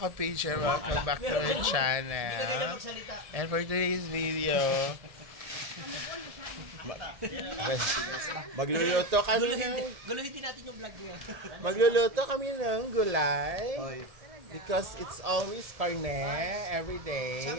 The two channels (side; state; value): left; late; 1.7 ms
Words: welcome back to my channel. And for today's video, magluluto kami ng Guluhin natin yung vlog niya. magluluto kami ng gulay because it's always carne every